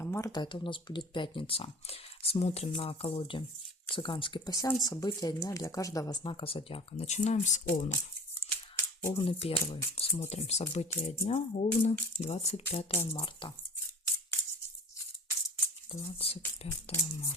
марта. Это у нас будет пятница. Смотрим на колоде «Цыганский пасьянс». События дня для каждого знака зодиака. Начинаем с Овнов. Овны первый. Смотрим события дня. Овны, 25 марта. 25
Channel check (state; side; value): normal; both; correlation 0.40